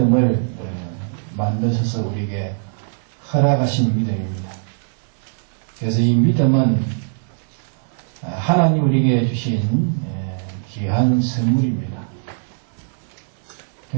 만드셔서 우리에게 허락하신 믿음입니다. 그래서 이 믿음은 하나님 우리에게 주신 귀한 선물입니다.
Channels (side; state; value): left; silent; 63 dB below the other